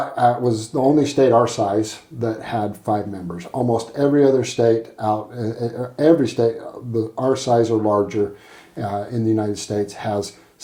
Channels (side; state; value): both; identical; correlation 1.00